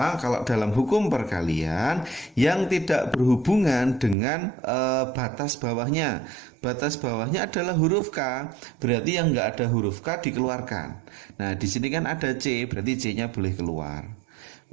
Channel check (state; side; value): drops out; left; at 4.2 s